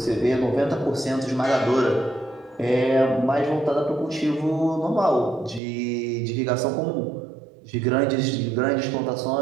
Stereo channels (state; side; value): drops out; left; at 5.6 s